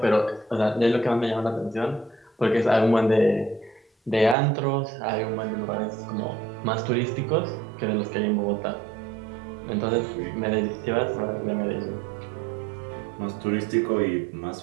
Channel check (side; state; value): left; drops out; at 4.4 s